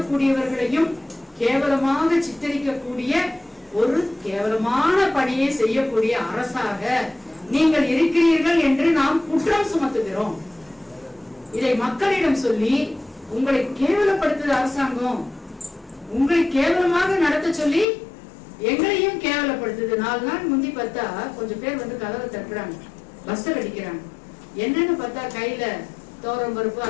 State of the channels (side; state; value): right; drops out; at 17.9 s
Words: கேவலமாக சித்தரிக்கக்கூடிய ஒரு கேவலமான பணியை செய்யக்கூடிய அரசாக நீங்கள் இருக்கிறீர்கள் என்று நாம் குற்றம் சுமத்துகிறோம். இதை மக்களிடம் சொல்லி உங்களை கேவலப்படுத்துது அரசாங்கம், உங்களை கேவலமாக நடத்த சொல்லி எங்களையும் கேவலப்படுத்துது. 4 நாள் முந்தி பார்த்தா கொஞ்சம் பேர் வந்து கதவை தட்டுறாங்க, பஸ்ஸர் அடிக்கிறாங்க. என்னன்னு பார்த்தா கையில தோரம் பருப்பு